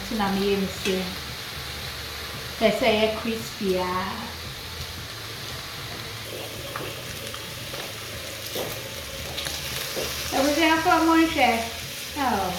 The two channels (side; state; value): both; identical; correlation 1.00